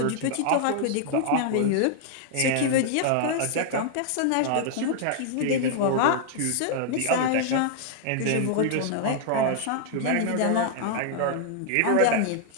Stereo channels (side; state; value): both; different; correlation 0.00